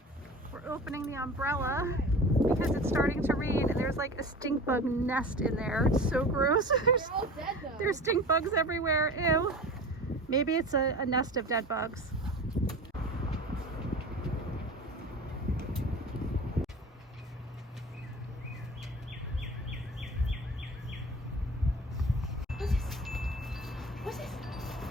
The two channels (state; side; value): normal; both; correlation 0.36